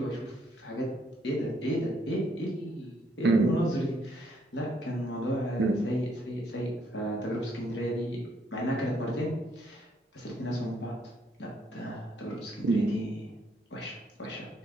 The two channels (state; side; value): normal; both; correlation 0.70